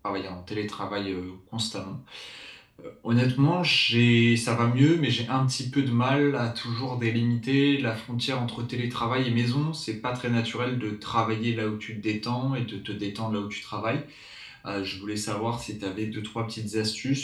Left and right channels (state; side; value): identical; both; correlation 1.00